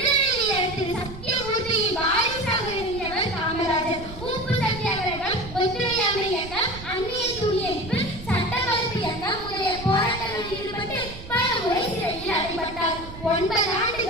வீரர் திரு சத்தியமூர்த்தியின் வாரிசாக இருந்தவர் காமராஜர். உப்பு சத்தியாகிரகம், ஒத்துழையாமை இயக்கம், அந்நிய துணியெடுப்பு, சட்ட மறுப்பு இயக்கம் முதலிய போராட்டங்களில் ஈடுபட்டு பல முறை சிறையில் அடைபட்டார். 9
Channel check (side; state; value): right; noise; rumble, 13 dB below the sound